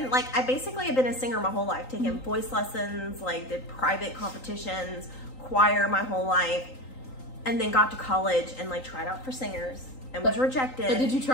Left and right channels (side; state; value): right; late; 3.9 ms